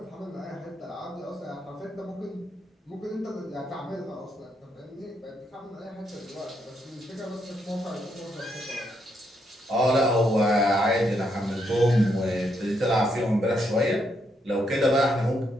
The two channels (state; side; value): normal; both; correlation 0.77